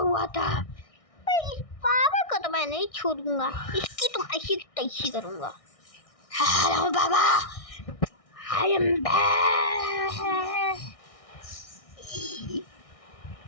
था। इस बाबा को तो मैं नहीं छोड़ूंगा, इसकी तो ऐसी तैसी करूंगा। Hello Baba, I am back.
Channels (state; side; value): late; right; 1.6 ms